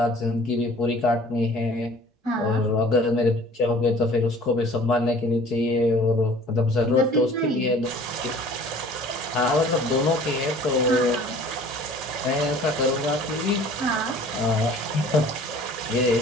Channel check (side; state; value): both; normal; correlation 0.49